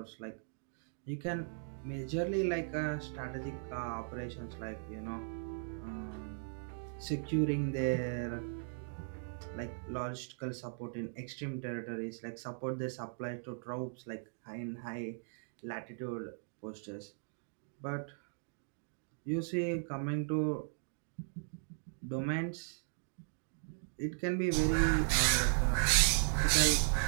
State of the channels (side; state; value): left; silent; digital silence